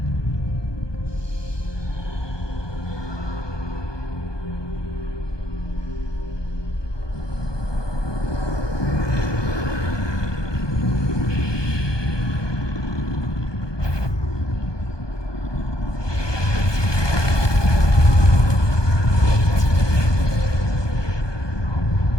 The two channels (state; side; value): late; right; 1.2 ms